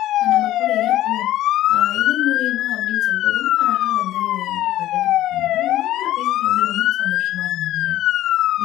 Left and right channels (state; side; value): quieter; right; 14.0 dB